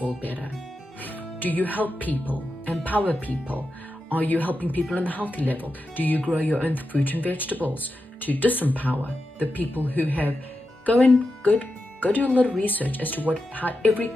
world better. Do you help people, empower people? Are you helping people on the healthy level? Do you grow your own fruit and vegetables to disempower the people who have? Go do a little research as to how every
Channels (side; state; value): both; normal; correlation 0.89